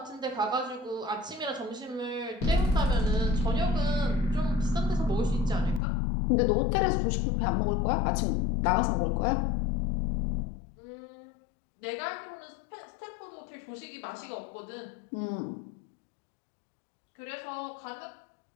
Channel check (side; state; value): right; drops out; at 5.8 s